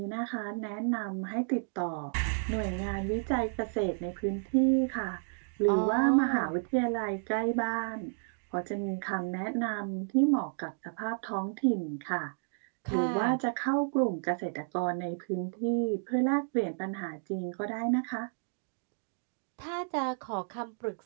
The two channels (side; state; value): left; silent; digital silence